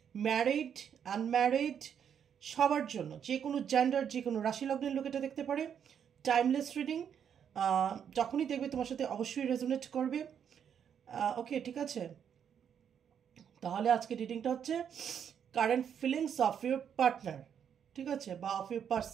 ম্যারিড, আনম্যারিড, সবার জন্য, যে কোনো জেন্ডার, যে কোনো রাশি লগ্নের লোক এটা দেখতে পারে। টাইমলেস রিডিং, যখনই দেখবে তোমার সাথে অবশ্যই রেজোনেট করবে। ওকে, ঠিক আছে। তাহলে আজকে রিডিংটা হচ্ছে current feelings of your partner, ঠিক আছে, বা of your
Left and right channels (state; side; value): quieter; left; 8.2 dB